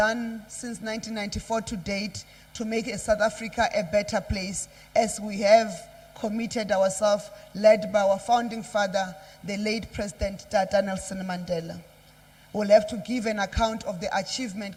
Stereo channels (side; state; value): both; identical; correlation 1.00